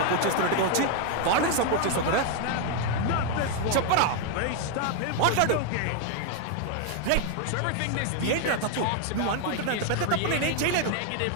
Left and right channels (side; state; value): both; different; correlation 0.01